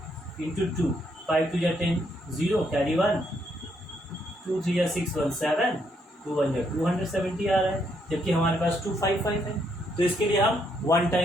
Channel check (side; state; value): both; normal; correlation 0.74